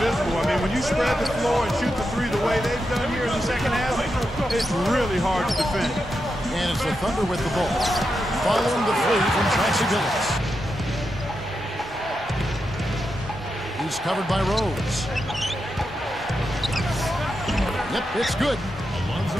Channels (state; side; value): normal; both; correlation 0.87